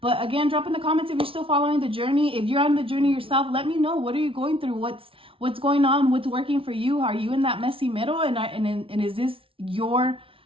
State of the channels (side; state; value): left; late; 0.26 ms